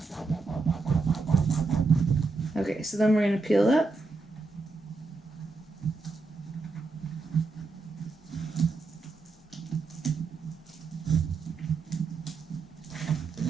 Okay, so then we're going to peel up.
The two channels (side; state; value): left; quieter; 3.8 dB